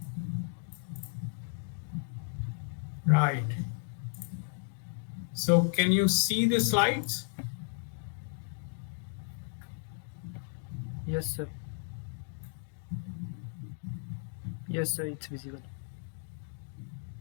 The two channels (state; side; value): silent; right; 55 dB below the other